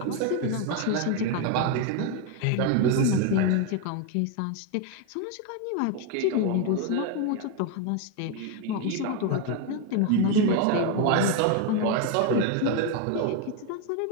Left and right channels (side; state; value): both; different; correlation 0.01